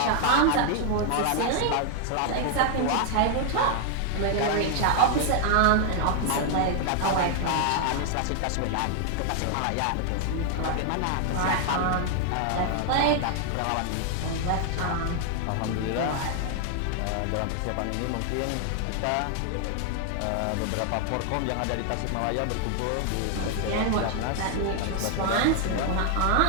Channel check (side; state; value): both; different; correlation 0.00